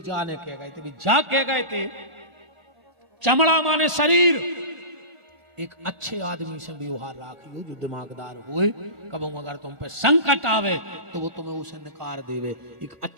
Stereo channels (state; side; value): late; left; 1.4 ms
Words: जाने कह गए थे, भी जा कह गए थे। चमड़ा माने शरीर। एक अच्छे आदमी से व्यवहार राखियो जो दिमागदार होए, कब अगर तुम पे संकट आवे तो वो तुम्हें उसे निकार देवे। एक